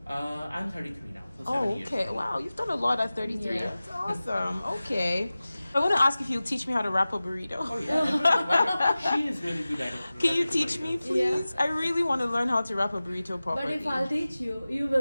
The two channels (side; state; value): both; inverted; correlation -0.97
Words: I'm 33 now. So 7 Oh, years. okay. Wow, you've done a lot at 33. Yeah. That's awesome. Okay. I want to ask if you'll teach me how to wrap a burrito. Oh yeah. She is really good at it. Can you teach me, please? I really want to learn how to wrap a burrito But properly. if I'll teach you, you